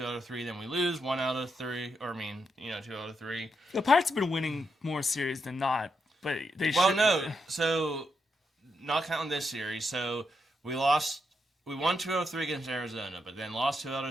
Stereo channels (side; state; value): both; normal; correlation 0.82